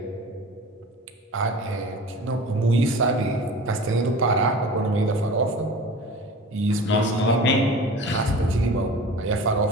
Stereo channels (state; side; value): normal; both; correlation 0.38